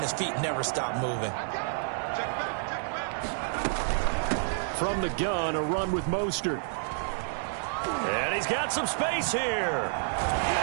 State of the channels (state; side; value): silent; left; digital silence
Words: his feet never stop moving? From the gun, a run with Mostert. And he's got some space here.